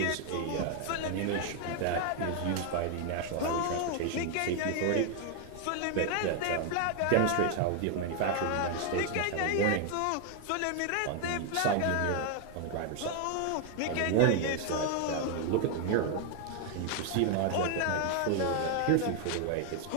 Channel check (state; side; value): different; both; correlation 0.01